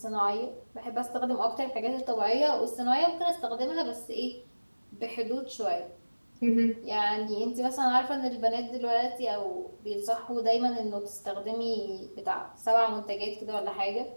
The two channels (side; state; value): both; inverted; correlation -1.00